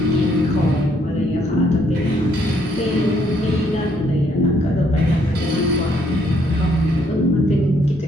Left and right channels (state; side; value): normal; both; correlation 0.69